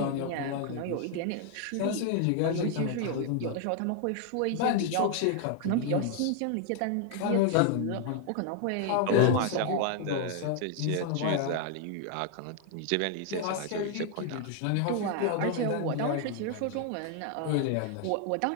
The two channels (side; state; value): both; different; correlation 0.00